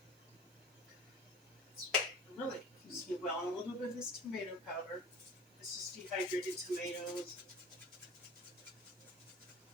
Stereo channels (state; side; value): noise; right; hiss, 26 dB below the sound